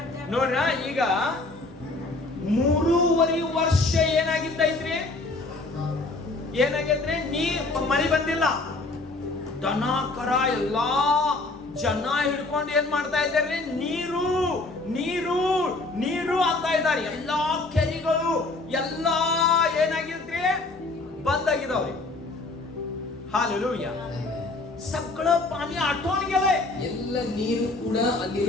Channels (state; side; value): quieter; right; 3.2 dB